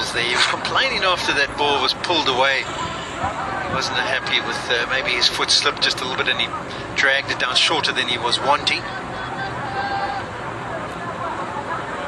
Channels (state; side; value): identical; both; correlation 1.00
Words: there. He was complaining after that ball was pulled away. He wasn't happy with maybe his foot slipped just a little bit and he dragged it down shorter than he was wanting.